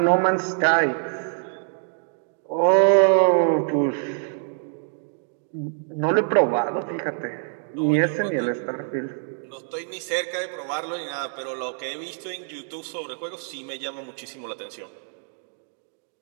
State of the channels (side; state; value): left; silent; 62 dB below the other